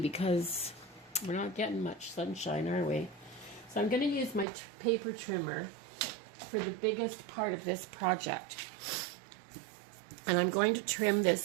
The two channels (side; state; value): left; drops out; at 4.5 s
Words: because we're not getting much sunshine, are we? So I'm going to use my paper trimmer for the biggest part of this project. And I'm going to trim